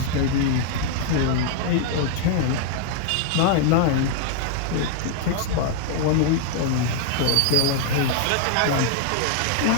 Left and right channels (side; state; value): both; different; correlation 0.00